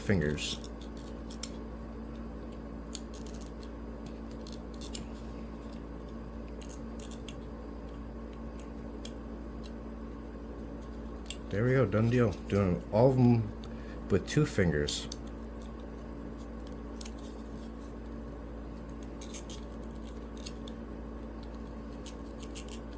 There we go, done deal. Doing all of them with 2 fingers.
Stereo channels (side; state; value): both; identical; correlation 1.00